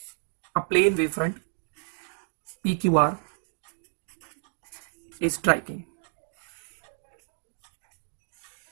a plane wavefront PQR is striking।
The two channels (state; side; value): silent; left; digital silence